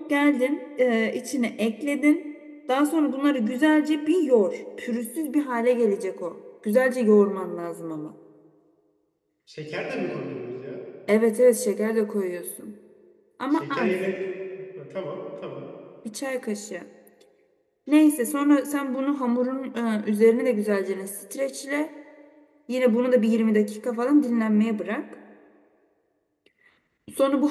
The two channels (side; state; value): both; identical; correlation 1.00